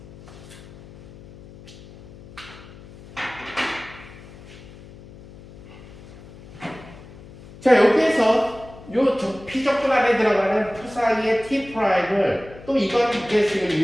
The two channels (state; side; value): noise; left; hum, 19 dB below the sound